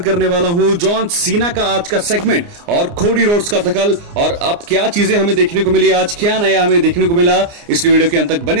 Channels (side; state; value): left; late; 29 ms